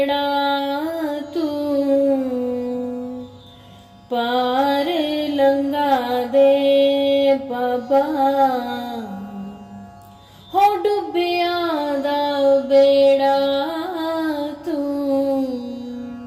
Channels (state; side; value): identical; both; correlation 1.00